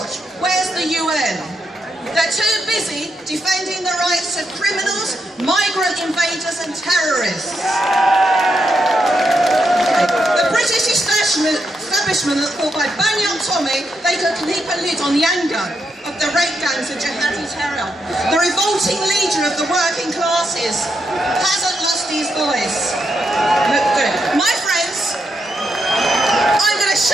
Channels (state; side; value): normal; both; correlation 0.82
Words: Where's the UN? They're too busy defending the rights of criminals, migrant invaders and terrorists. The British establishment that thought by banning on Tommy they could keep a lid on the anger of the rape gangs of jihadi terror. The revolting leader of the working classes hasn't lost his voice. Look good. My friends, I'm going to